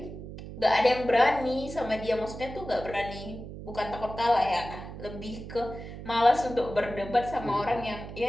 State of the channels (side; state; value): right; noise; hum, 11 dB below the sound